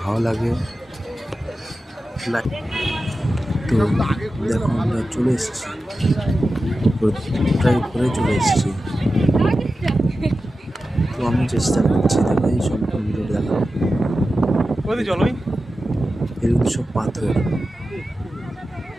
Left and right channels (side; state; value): both; normal; correlation 0.93